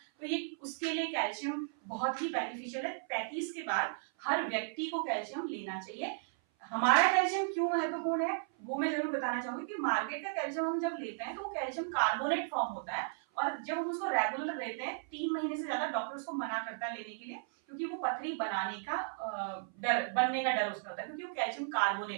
तो ये उसके लिए कैल्शियम बहुत ही बेनिफिशियल है। 35 के बाद हर व्यक्ति को कैल्शियम लेना चाहिए। हमारा कैल्शियम क्यों महत्वपूर्ण है वो मैं जरूर बताना चाहूंगी कि मार्केट का कैल्शियम हम जब लेते हैं तो वो कैल्शियम कार्बोनेट फॉर्म होता है और जब हम उसको रेगुलर लेते हैं 3 महीने से ज्यादा डॉक्टर उसको मना करता है लेने के लिए क्योंकि वो पथरी बनाने का डर, बनने का डर उसका होता है क्योंकि वो कैल्शियम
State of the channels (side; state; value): left; silent; 54 dB below the other